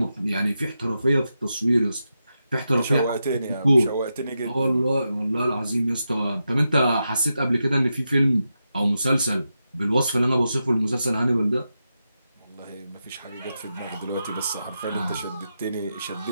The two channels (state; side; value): inverted; both; correlation -0.88